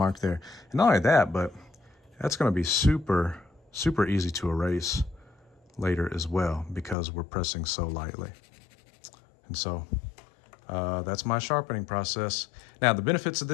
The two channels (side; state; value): right; drops out; at 7.0 s